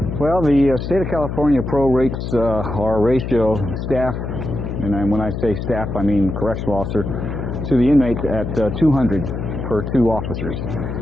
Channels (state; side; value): noise; left; hum, 5 dB below the sound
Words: Well, the state of California prorates our ratio staff, and when I say staff, I mean correctional officer, to the inmates at 200 per 2 officers.